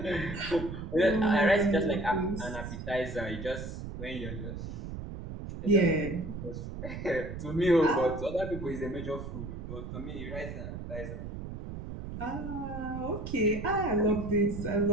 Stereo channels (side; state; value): right; noise; rumble, 8 dB below the sound